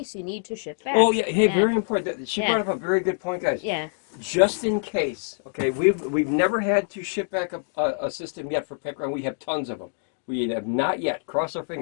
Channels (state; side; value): silent; right; 62 dB below the other